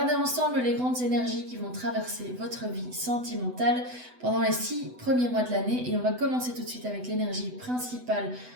ensemble les grandes énergies qui vont traverser votre vie sentimentale pendant les 6 premiers mois de l'année et on va commencer tout de suite avec l'énergie principale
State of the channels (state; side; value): late; left; 8.0 ms